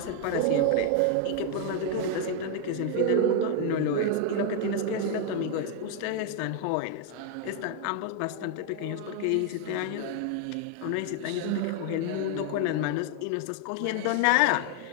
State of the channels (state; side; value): different; both; correlation 0.00